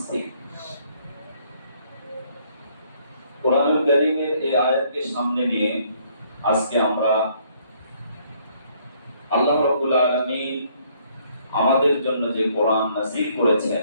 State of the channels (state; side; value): inverted; both; correlation -0.65